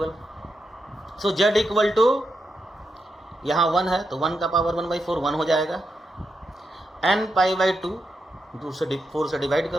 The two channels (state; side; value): normal; both; correlation 0.85